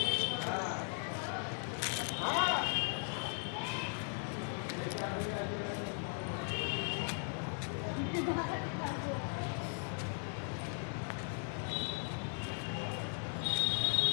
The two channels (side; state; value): right; silent; 52 dB below the other